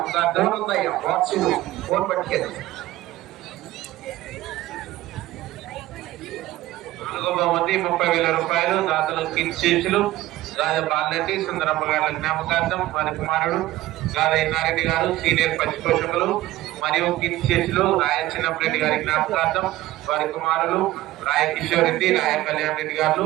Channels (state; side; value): quieter; left; 16.2 dB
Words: 4వ బహుమతి 30,000 రూపాయలు దాతలు కీర్తిశేషులు గాద బాలరెడ్డి సుందరమ్మ గారి జ్ఞాపకార్థం వారి కుమారుడు గాద ఇన్నారెడ్డి గారు సీనియర్ పచ్చి పోషకులు మరియు కీర్తిశేషులు రాయ చిన్నప్పరెడ్డి గారి జ్ఞాపకార్థం వారి కుమారులు రాయ కిషోర్ రెడ్డి, రాయ కళ్యాణ్ రెడ్డి గారు